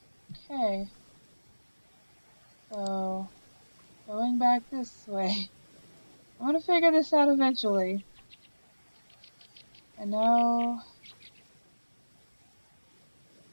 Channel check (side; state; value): both; inverted; correlation -1.00